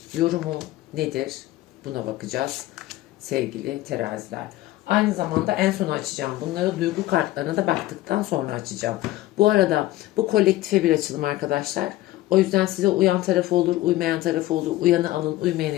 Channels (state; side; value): quieter; right; 16.3 dB